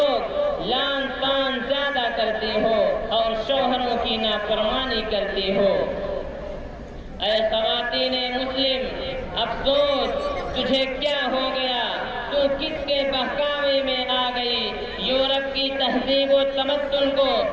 لعن طعن زیادہ کرتی ہو اور شوہروں کی نافرمانی کرتی ہو۔ اے خواتین مسلم افسوس تجھے کیا ہو گیا، تو کس کے بہکاوے میں آ گئی؟ یورپ کی تہذیب و تمدن کو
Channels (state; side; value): identical; both; correlation 1.00